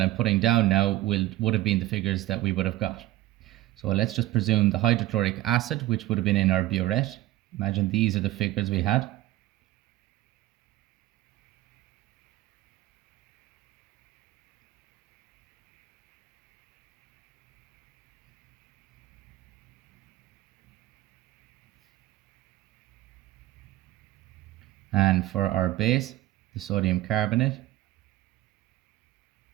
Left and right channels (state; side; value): quieter; left; 15.6 dB